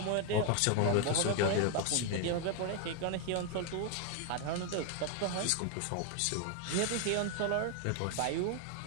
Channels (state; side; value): different; both; correlation 0.01